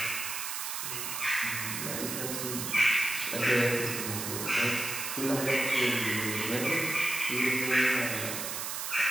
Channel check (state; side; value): noise; right; hiss, 4 dB below the sound